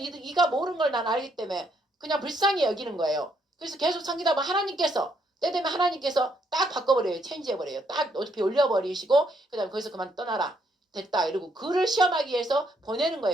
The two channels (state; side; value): normal; both; correlation 0.72